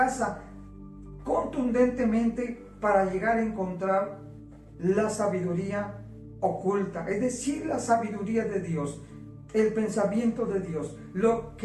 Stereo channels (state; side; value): identical; both; correlation 1.00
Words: contundentemente para llegar a encontrar la sabiduría oculta, es decir, la sabiduría de Dios, el pensamiento de Dios, lo